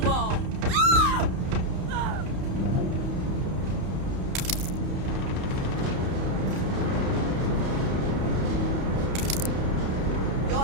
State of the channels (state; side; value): late; left; 31 ms